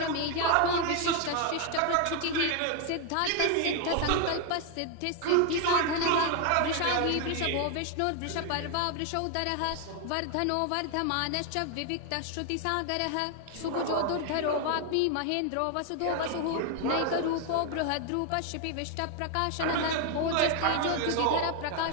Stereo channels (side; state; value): both; different; correlation 0.00